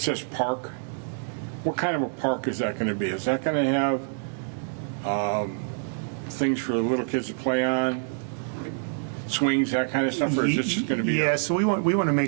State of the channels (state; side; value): silent; left; digital silence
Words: park, what kind of a park is that going to be? Is that going to have things for the little kids to play on, swings, that kind of stuff, or is it just going to be? Yeah, so we want to